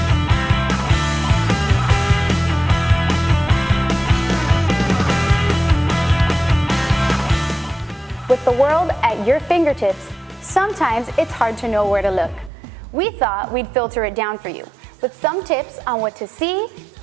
With the world at your fingertips, sometimes it's hard to know where to look. We thought we'd filter it down for you with some tips on what to see,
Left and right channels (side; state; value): left; drops out; at 12.5 s